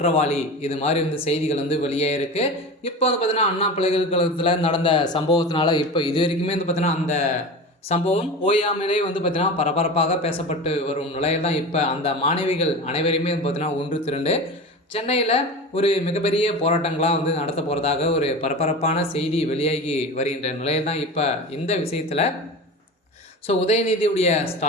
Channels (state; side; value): normal; both; correlation 0.30